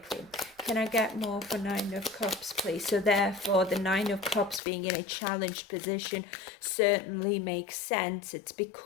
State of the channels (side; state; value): right; drops out; at 4.6 s